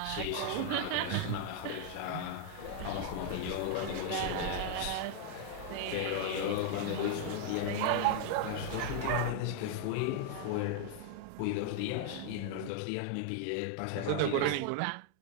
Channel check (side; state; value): both; different; correlation 0.00